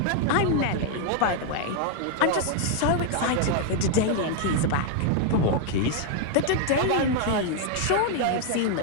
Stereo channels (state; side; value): different; both; correlation 0.00